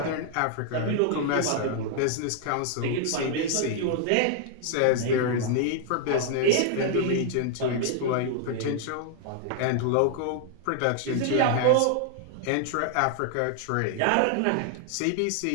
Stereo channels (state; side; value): different; both; correlation 0.00